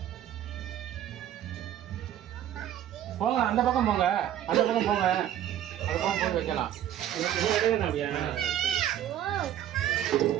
போங்க அந்த பக்கம் போங்க அந்த பக்கம் போங்க அந்த பக்கம் போய் வைக்கலாம்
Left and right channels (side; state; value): left; quieter; 11.2 dB